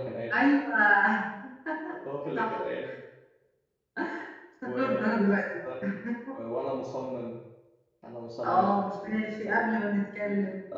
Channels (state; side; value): identical; both; correlation 1.00